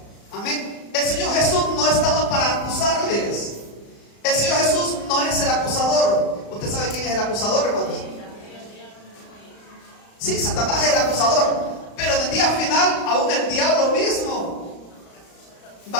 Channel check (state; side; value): late; right; 35 ms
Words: Amén. El Señor Jesús no estaba para acusarles. El Señor Jesús no es el acusador. ¿Usted sabe quién es el acusador, hermanos? Sí, Satanás es el acusador. Pero en el día final, aún el diablo mismo